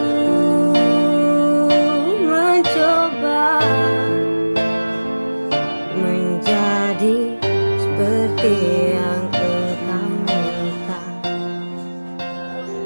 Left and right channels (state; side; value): inverted; both; correlation -1.00